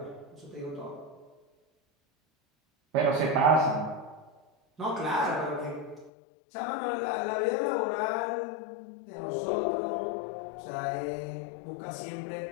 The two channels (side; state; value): right; drops out; at 6.1 s